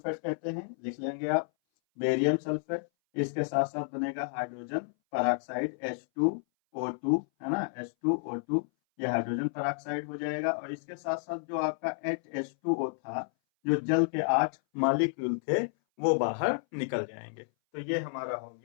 कहते हैं, लिख लेंगे आप बेरियम सल्फेट। इसके साथ साथ बनेगा हाइड्रोजन पेरोक्साइड H2O2, है ना, H2O2, ये हाइड्रोजन पेरोक्साइड हो जाएगा। और इसके साथ साथ जो आपका H2O था, जो जल के 8 मॉलिक्यूल थे, वो बाहर निकल जाएंगे। तो ये हमारा हो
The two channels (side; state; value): right; silent; 57 dB below the other